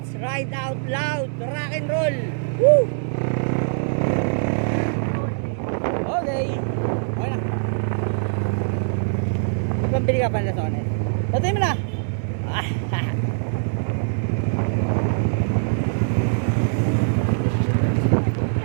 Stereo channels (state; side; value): silent; left; digital silence